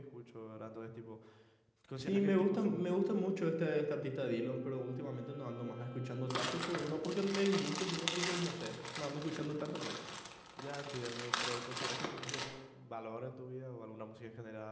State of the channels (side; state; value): both; identical; correlation 1.00